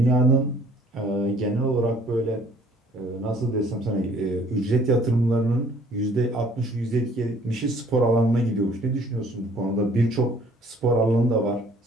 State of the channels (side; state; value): both; normal; correlation 0.57